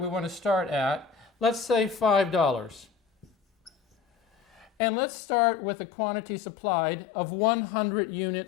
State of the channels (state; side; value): drops out; right; at 4.7 s